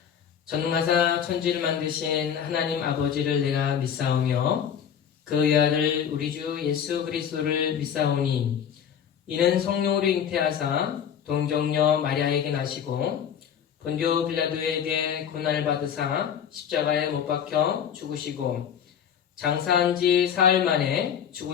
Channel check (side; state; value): right; quieter; 8.3 dB